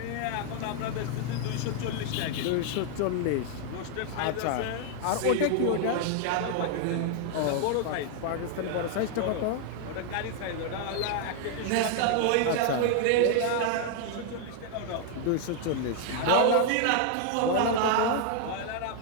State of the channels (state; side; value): different; both; correlation 0.00